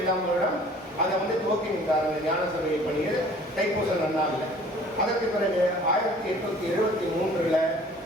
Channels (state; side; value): normal; both; correlation 0.51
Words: வருடம் அதை துவக்கின்றார் அந்த ஞான சபையை பணியை தைப்பூச நன்னாளில். அதற்கு பிறகு 1873